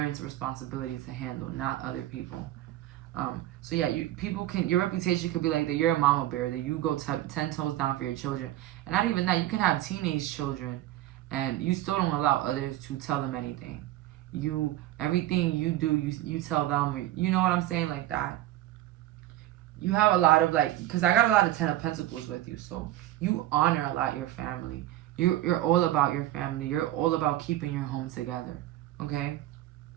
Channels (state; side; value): quieter; left; 14.7 dB